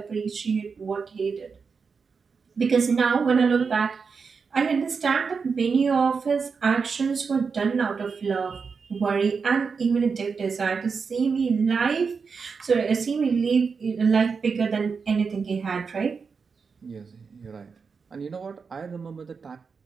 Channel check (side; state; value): left; quieter; 5.4 dB